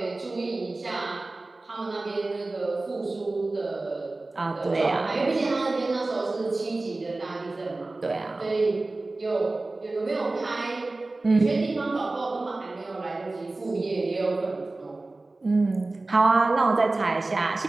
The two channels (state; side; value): quieter; left; 3.1 dB